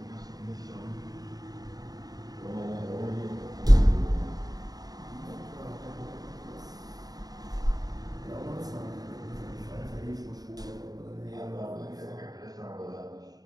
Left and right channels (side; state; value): left; late; 0.18 ms